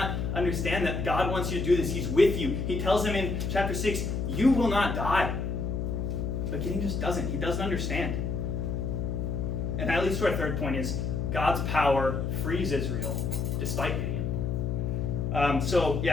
understand that God wants you to do this? He's with you. He tells him in chapter 6, you will not die. But Gideon just doesn't. He doesn't understand. And that leads to our third point is God's power frees Israel despite Gideon. So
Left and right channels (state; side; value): noise; left; hum, 1 dB below the sound